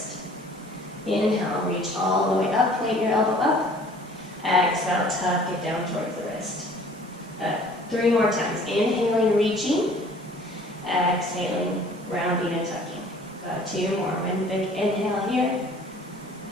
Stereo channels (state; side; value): normal; both; correlation 0.52